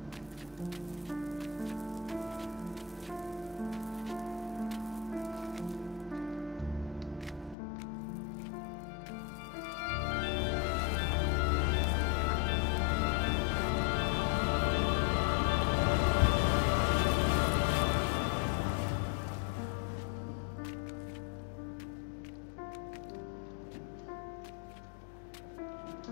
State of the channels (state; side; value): drops out; right; at 7.6 s